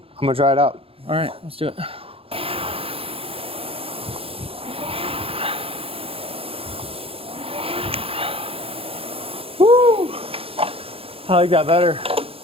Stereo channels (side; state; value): left; late; 0.27 ms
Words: I'm gonna try it out. All right, let's do it. Woo! I like that better.